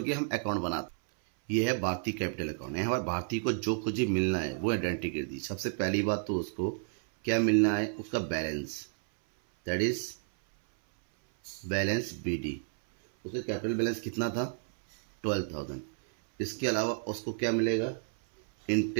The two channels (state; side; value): silent; left; 57 dB below the other